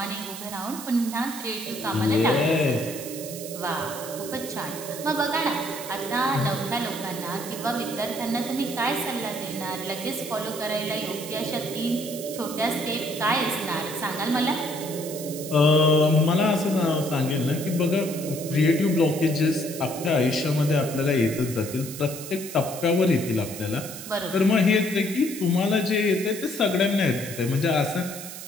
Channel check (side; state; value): right; noise; hiss, 11 dB below the sound